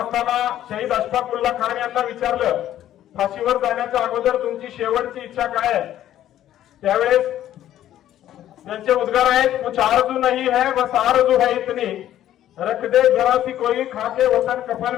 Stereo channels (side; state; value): right; quieter; 12.1 dB